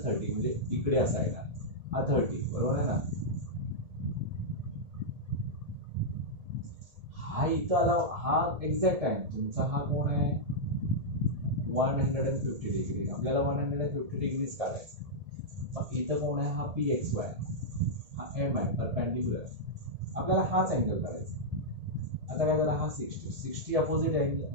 30 म्हणजे इकडे असा येणार हा 30 बरोबर आहे ना. हा इथं आला, हा एक्झॅक्ट आहे तुमचा. हा कोण आहे 150 डिग्री. आपल्याला 150 डिग्रीज काढायचं. मग इथं कोण आहे, हा पी एक्स वाय, हा एम आहे परपेंडिक्युलर. आपल्याला हाच अँगल काढायचा. आता काय झाला, हा 60 opposite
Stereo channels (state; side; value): late; left; 1.8 ms